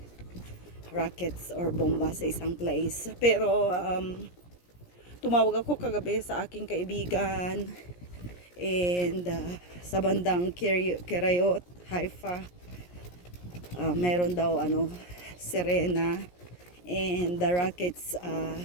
rockets or bomba sa isang place. Pero tumawag ako kagabi sa aking kaibigan And sa bandang Kirayot, Haifa, meron daw Serena, and the rockets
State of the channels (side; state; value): right; late; 17 ms